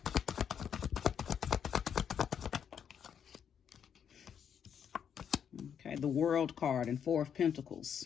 Okay, the World card and 4 of Pentacles.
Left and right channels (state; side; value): quieter; right; 8.1 dB